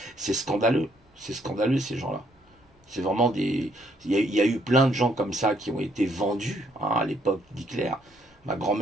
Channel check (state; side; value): normal; both; correlation 0.69